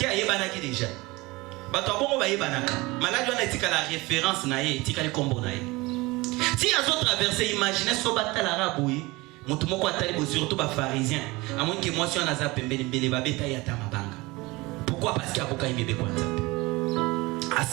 y a Yebanaki déjà. Batouabongo ba Yebanaka. Malade, on a dit que la référence naïe, tika le combo naïe. Si ils ont traversé, imaginez ce batal arabe, Moutoumoko Atali, surtout les pharisiens. À moins que moi, si on a zappé, Mbele Babeta Yatamabanga. Pourquoi? Parce qu'il y a beaucoup de bébés comme ça. À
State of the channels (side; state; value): left; quieter; 22.6 dB